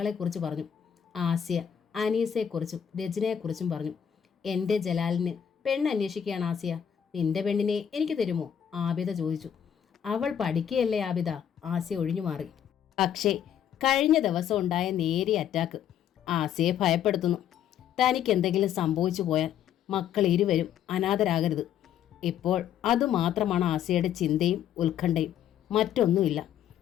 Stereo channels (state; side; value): quieter; right; 9.3 dB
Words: പറഞ്ഞു. ആസിയ അനീസയെക്കുറിച്ചും രചനയെക്കുറിച്ചും പറഞ്ഞു. എൻ്റെ ജലാലിന് പെണ്ണ് അന്വേഷിക്കുകയാണ് ആസിയ. നിന്റെ പെണ്ണിനെ എനിക്ക് തരുമോ? ആബിദ ചോദിച്ചു. അവൾ പഠിക്കുകയല്ലേ ആബിദ, ആസിയ ഒഴിഞ്ഞു മാറി. പക്ഷേ കഴിഞ്ഞ ദിവസം ഉണ്ടായ നേരിയ അറ്റാക്ക് ആസിയെ ഭയപ്പെടുത്തുന്നു. തനിക്ക് എന്തെങ്കിലും സംഭവിച്ചു പോയാൽ മക്കൾ ഇരുവരും അനാഥരാകരുത്. ഇപ്പോൾ അതുമാത്രമാണ് ആസിയയുടെ ചിന്തയും ഉത്കണ്ഠയും, മറ്റൊന്നുമില്ല.